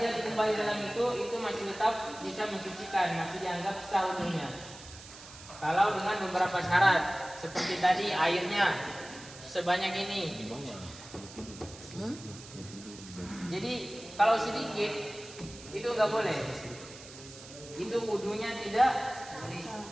kembali dalam itu masih tetap bisa mensucikan, masih dianggap sah wudunya. Kalau dengan beberapa syarat seperti tadi airnya sebanyak ini. Jadi kalau sedikit itu nggak boleh. Itu wudunya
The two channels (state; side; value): noise; right; hiss, 16 dB below the sound